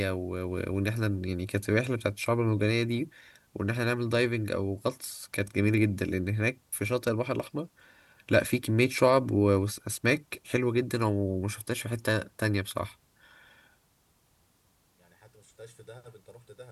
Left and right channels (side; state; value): both; identical; correlation 1.00